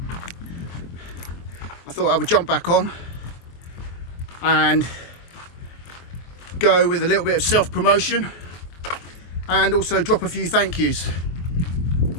I thought I would jump back on and go with a little bit of self-promotion and also drop a few thank yous.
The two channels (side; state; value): right; late; 24 ms